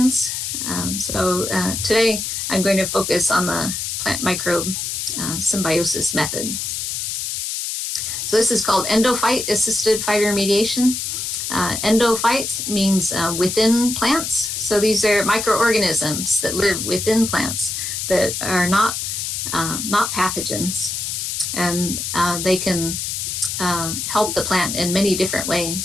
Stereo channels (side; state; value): left; noise; hiss, 3 dB below the sound